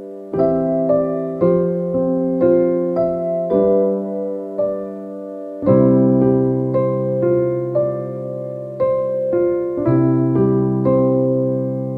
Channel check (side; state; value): both; identical; correlation 1.00